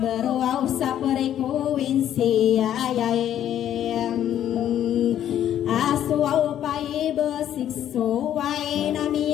beruaw sa perekuin siyayayem aswaw pa ibasik-suway na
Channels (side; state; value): right; quieter; 10.8 dB